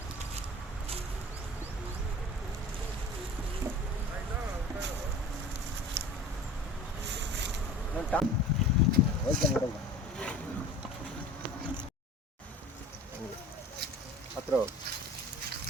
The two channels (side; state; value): both; normal; correlation 0.40